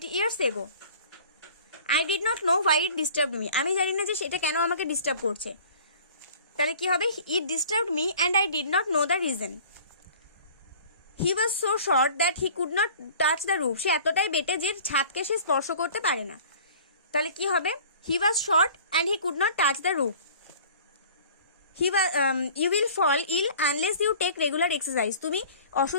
years ago. I did not know why it disturbed me, আমি জানি না যে সেটা কেন আমাকে ডিস্টার্ব করছে। তাহলে কি হবে, it disturbed me and I did not know the reason. He was so short that he could not touch the roof, সে এতটাই বেটে যে ছাদকে সে স্পর্শ করতে পারে না। তাহলে কি হবে, he was short and he could not touch the roof. You will fall ill unless you take regular exercise, তুমি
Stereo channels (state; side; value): inverted; both; correlation -0.47